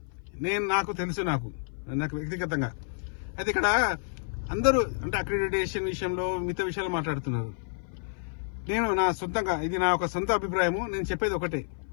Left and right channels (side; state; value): right; silent; 56 dB below the other